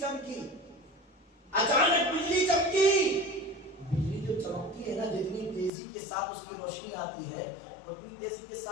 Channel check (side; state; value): right; drops out; at 5.7 s